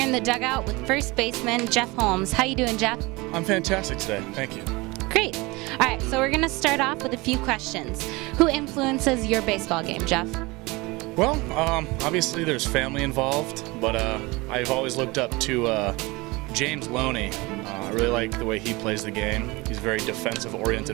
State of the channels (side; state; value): left; quieter; 23.6 dB